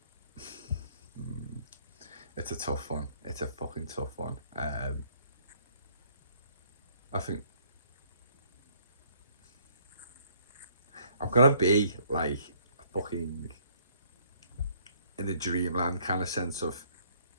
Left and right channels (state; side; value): inverted; both; correlation -0.63